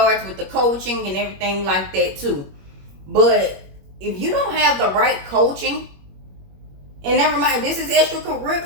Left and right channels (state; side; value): late; left; 21 ms